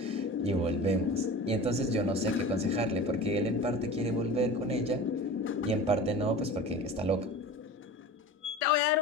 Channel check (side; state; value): both; normal; correlation 0.35